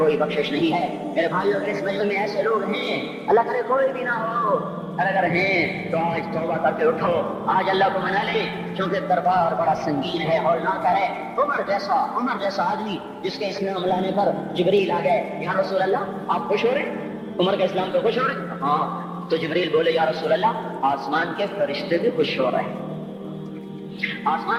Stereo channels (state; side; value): identical; both; correlation 1.00